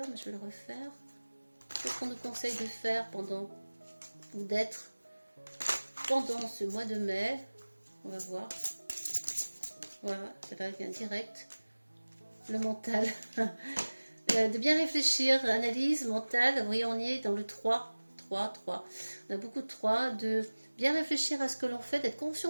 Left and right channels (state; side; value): inverted; both; correlation -1.00